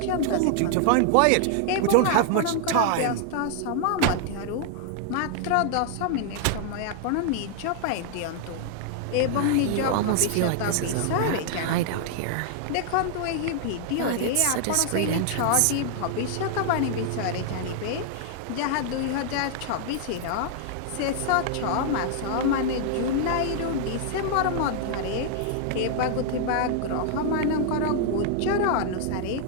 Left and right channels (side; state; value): both; different; correlation 0.00